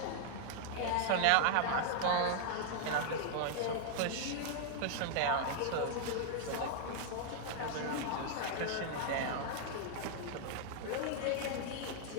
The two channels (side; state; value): both; different; correlation -0.01